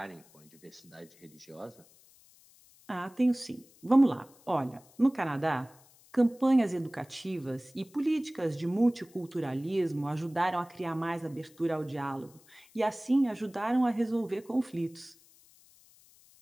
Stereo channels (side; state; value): left; noise; hiss, 27 dB below the sound